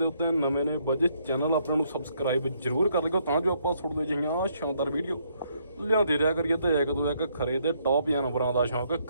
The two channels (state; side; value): inverted; both; correlation -0.71